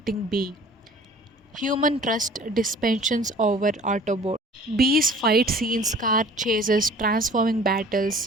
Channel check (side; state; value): both; normal; correlation 0.48